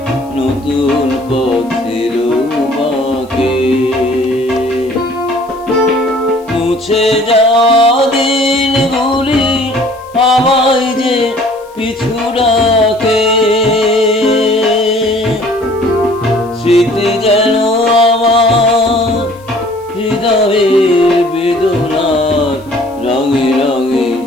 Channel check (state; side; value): noise; left; hiss, 28 dB below the sound